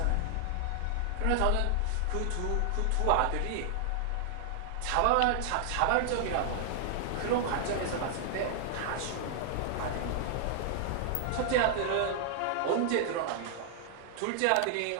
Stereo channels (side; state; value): both; different; correlation 0.00